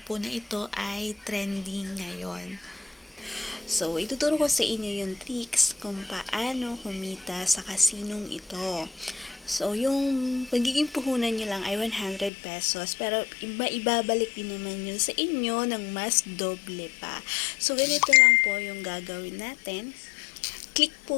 po na ito ay trending ngayon. So, ituturo ko sa inyo yung tricks kung paano kumita sa kasinong ito. So, yung magiging puhunan nyo lang ay 100 pesos, pero ibabalik din naman yun sa inyo ng mas doble pa. So, ganito lang po yung gagawin natin. Click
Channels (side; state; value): right; drops out; at 12.3 s